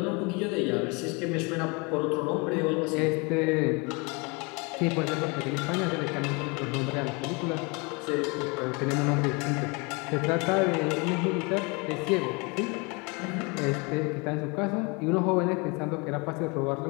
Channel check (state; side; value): quieter; right; 29.5 dB